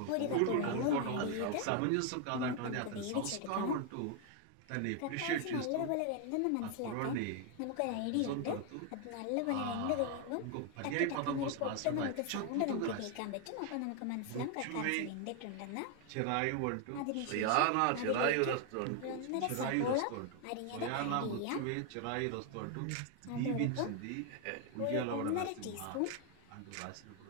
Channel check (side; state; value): both; different; correlation 0.01